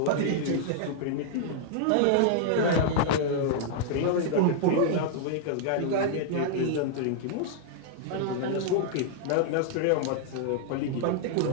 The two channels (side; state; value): both; different; correlation -0.01